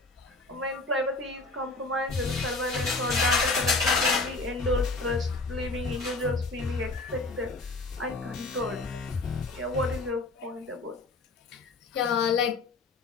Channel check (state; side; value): quieter; right; 3.3 dB